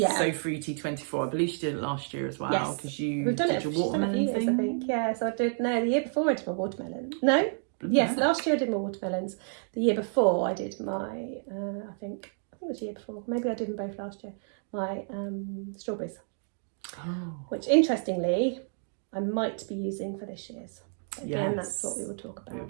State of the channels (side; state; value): left; silent; 58 dB below the other